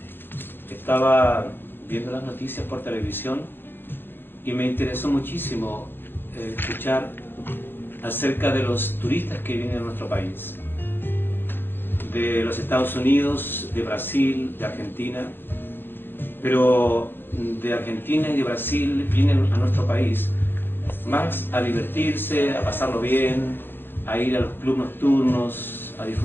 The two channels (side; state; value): right; late; 0.10 ms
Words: estaba viendo las noticias por televisión y me interesó muchísimo escuchar acerca de los turistas que vienen a nuestro país, de los Estados Unidos, de Brasil, de Argentina, pero de Argentina y de Brasil vienen a nuestro país más a divertirse, a pasarlo bien, a ir a los clubes nocturnos, a